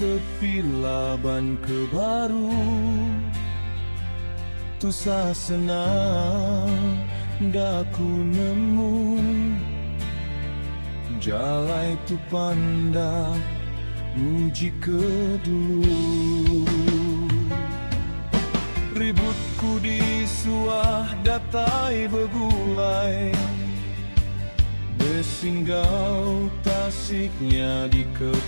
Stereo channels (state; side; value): inverted; both; correlation -1.00